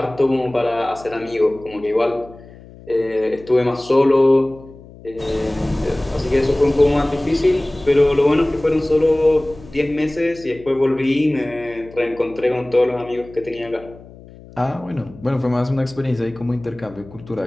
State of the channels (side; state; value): left; noise; hum, 20 dB below the sound